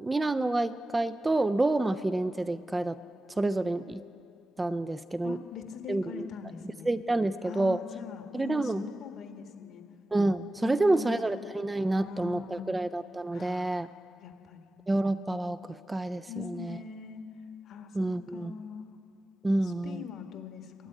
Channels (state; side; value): normal; both; correlation 0.94